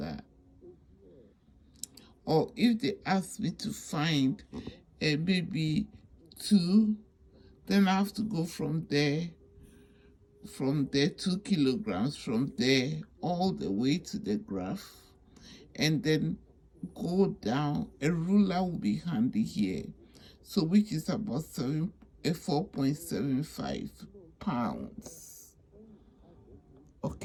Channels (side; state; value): both; identical; correlation 1.00